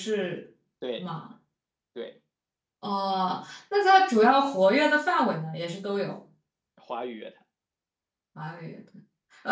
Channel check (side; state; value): both; identical; correlation 1.00